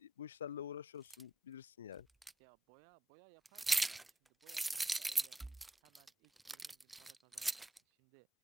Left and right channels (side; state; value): both; normal; correlation 0.88